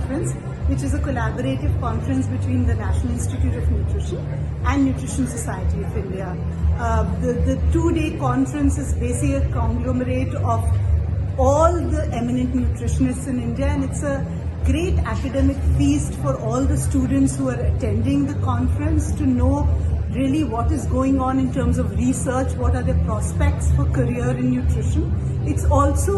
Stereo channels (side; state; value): both; identical; correlation 1.00